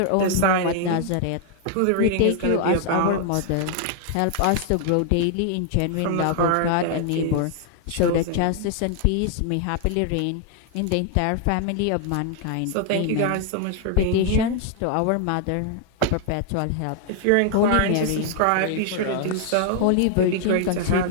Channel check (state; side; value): different; both; correlation 0.00